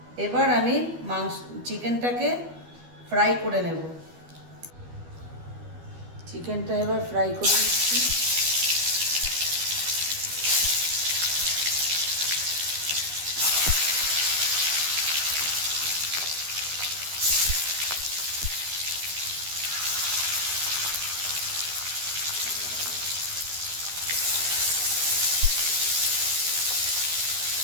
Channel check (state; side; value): late; left; 12 ms